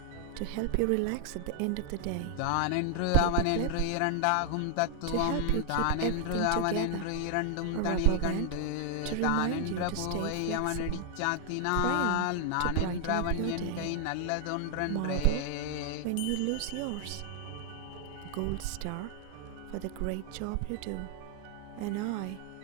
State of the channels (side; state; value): both; different; correlation 0.00